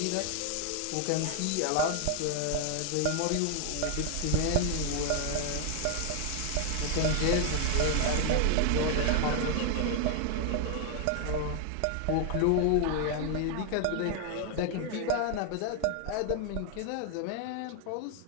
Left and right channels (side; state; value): both; different; correlation 0.00